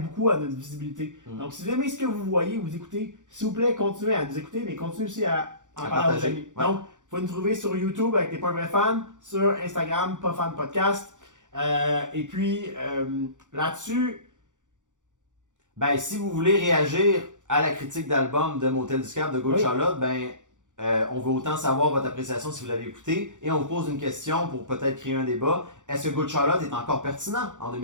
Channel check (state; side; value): late; left; 0.86 ms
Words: beaucoup à notre visibilité. Donc, si vous aimez ce que vous voyez, vous écoutez, s'il vous plaît, continuez à nous écouter, mais continuez aussi à en parler à vos amis. Donc, vous pouvez nous trouver sur YouTube avec T'es pas un vrai fan, sur Instagram, Pas Fan Podcast. Et puis, là-dessus... Ben, si vous voulez réagir à la critique d'album de Motel du Cap de Good Charlotte, ben, on veut autant savoir votre appréciation si vous l'avez écouté et on vous pose une question pour peut-être créer un débat. Est-ce que Good Charlotte est encore pertinent en